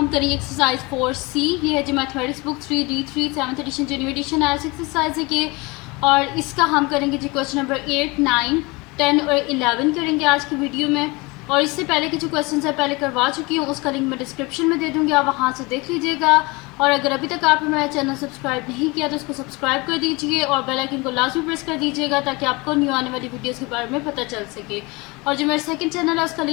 करेंगे एक्सरसाइज 4C। ये है जो mathematics book 3D3 7th edition जो न्यू एडिशन आया एक्सरसाइज है कि, और इसका हम करेंगे जी क्वेश्चन नंबर 8, 9, 10 और 11 करेंगे आज की वीडियो में। और इससे पहले के जो क्वेश्चन है पहले करवा चुकी हूँ, उसका लिंक मैं डिस्क्रिप्शन में दे दूँगी, आप वहाँ से देख लीजिएगा। और अगर अभी तक आपने मेरा चैनल सब्सक्राइब नहीं किया तो उसको सब्सक्राइब कर दीजिए और बेल आइकन को लाजमी प्रेस कर दीजिएगा ताकि आपको न्यू आने वाली वीडियोस के बारे में पता चल सके। और जो मेरा सेकंड चैनल है उसका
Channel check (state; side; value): quieter; right; 25.4 dB